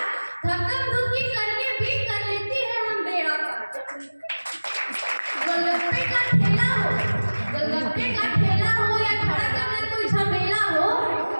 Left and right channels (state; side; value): inverted; both; correlation -1.00